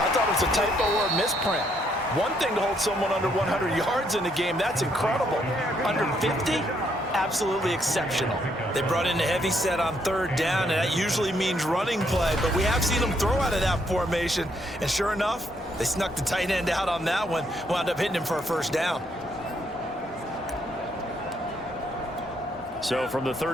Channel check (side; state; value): both; normal; correlation 0.72